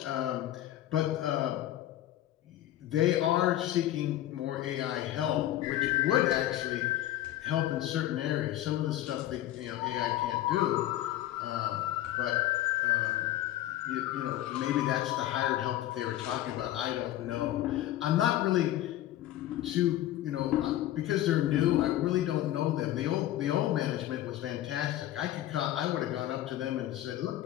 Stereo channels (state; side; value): quieter; right; 13.6 dB